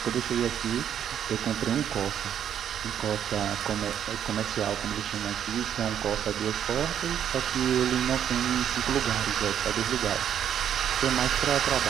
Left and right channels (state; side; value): quieter; left; 9.5 dB